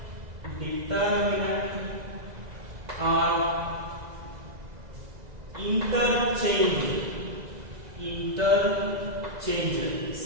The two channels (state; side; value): late; left; 2.0 ms